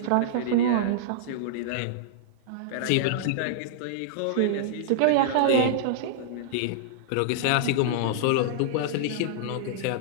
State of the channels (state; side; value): different; both; correlation -0.02